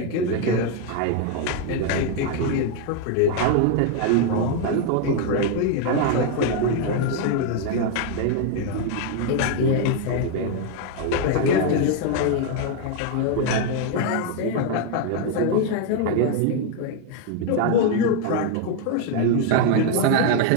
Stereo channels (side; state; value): both; different; correlation 0.01